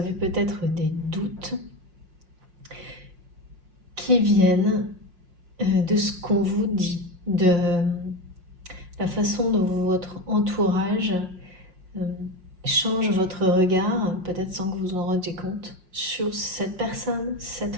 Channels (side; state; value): left; late; 5.5 ms